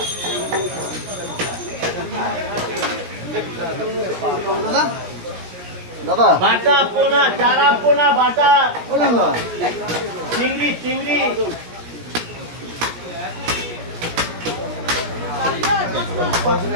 দাদা দাদা বাটা পোনা চারা পোনা বাটা চিংড়ি চিংড়ি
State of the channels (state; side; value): late; left; 17 ms